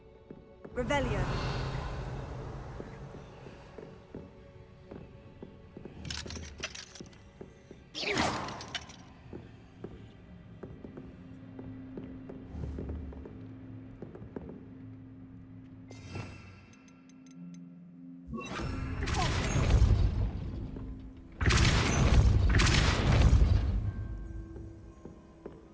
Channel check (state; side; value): identical; both; correlation 1.00